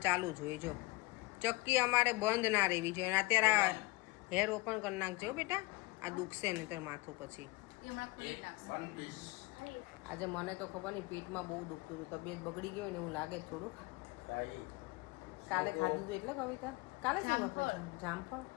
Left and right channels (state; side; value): quieter; right; 22.5 dB